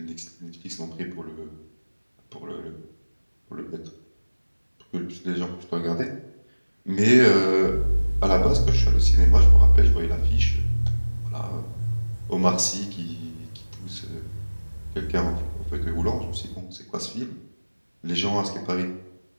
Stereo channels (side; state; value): both; inverted; correlation -1.00